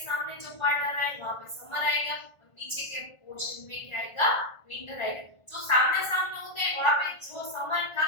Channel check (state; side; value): late; right; 1.5 ms